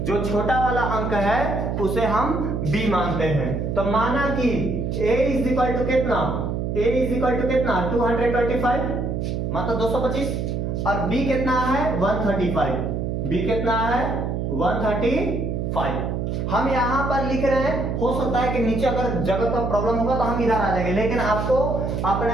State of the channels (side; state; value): right; noise; hum, 2 dB below the sound